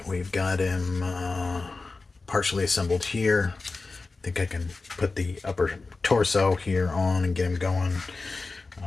We've got him partially assembled here. I think I can put the upper torso here on and get him going.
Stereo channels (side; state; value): right; quieter; 3.8 dB